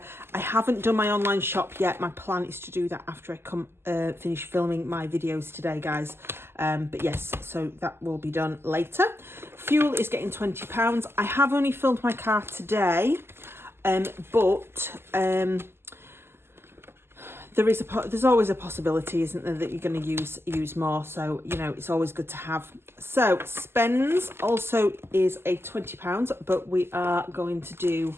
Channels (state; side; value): late; left; 0.12 ms